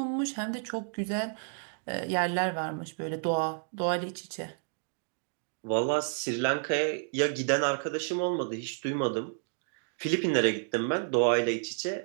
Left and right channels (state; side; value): silent; left; digital silence